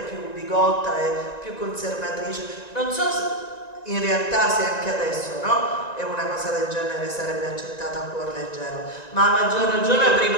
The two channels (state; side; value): late; right; 1.9 ms